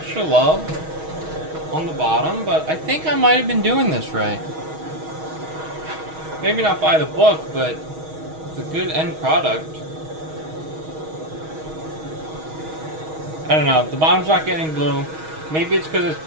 love on the bottom. But I think I might have been doing this right. Maybe not by the book, but the good end product. I don't know. The bottom's not getting blue. Maybe it's because it's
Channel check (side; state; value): left; late; 6.3 ms